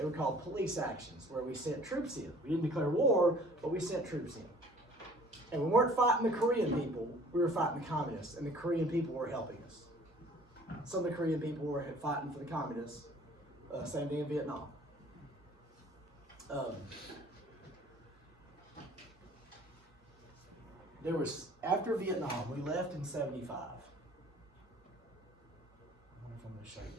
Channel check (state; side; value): normal; both; correlation 0.52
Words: were called police actions, where we sent troops in. We didn't declare war, but we sent troops in. And we weren't fighting the Korean people. We were fighting the communists, and the Korean people were helping us. Some of the Korean people were fighting for the communists. Same thing in Vietnam. After Vietnam, we left in 75. I wonder if I'm going to show you